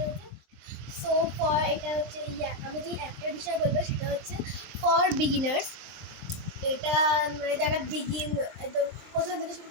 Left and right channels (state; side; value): late; left; 23 ms